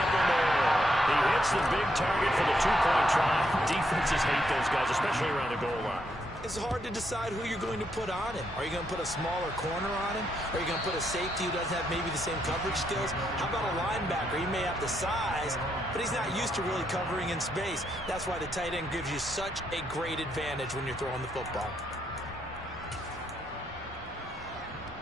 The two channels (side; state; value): both; normal; correlation 0.77